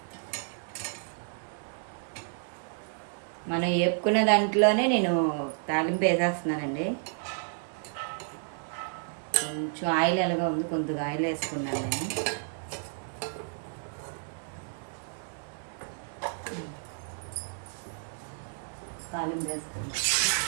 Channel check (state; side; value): silent; left; digital silence